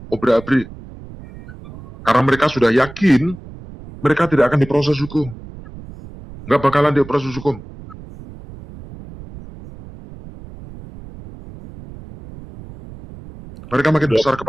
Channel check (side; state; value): right; noise; rumble, 17 dB below the sound